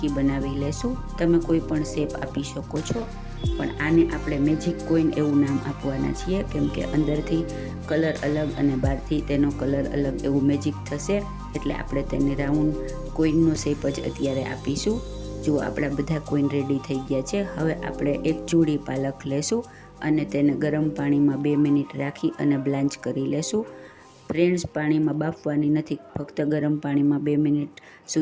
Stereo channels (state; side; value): identical; both; correlation 1.00